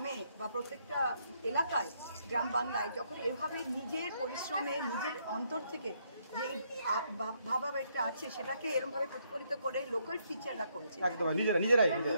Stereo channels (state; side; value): inverted; both; correlation -0.73